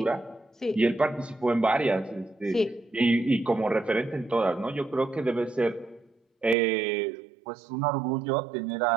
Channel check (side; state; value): left; drops out; at 6.6 s